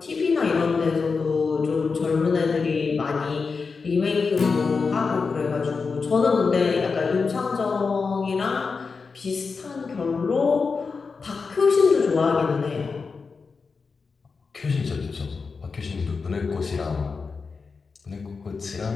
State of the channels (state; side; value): quieter; right; 4.8 dB